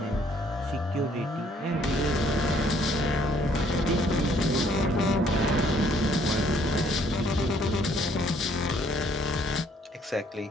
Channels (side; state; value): both; normal; correlation 0.64